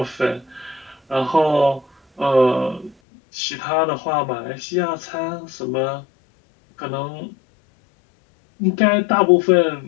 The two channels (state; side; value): drops out; right; at 3.0 s